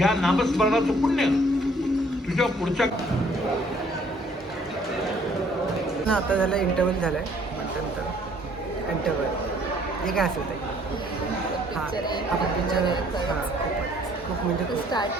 नामस्मरणाचं पुण्य तुझ्या पुढच्या आता झालं इंटरव्हल झालाय, नंतर इंटरव्हल हे काय असेल ते. हा आपण पिक्चर खूप म्हणजे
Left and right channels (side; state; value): both; normal; correlation 0.61